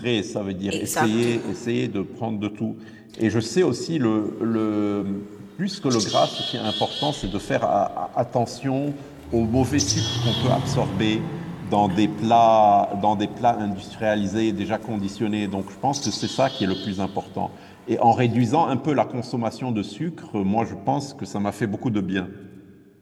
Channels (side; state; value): both; identical; correlation 1.00